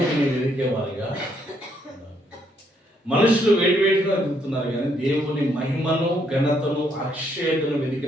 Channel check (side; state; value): both; normal; correlation 0.72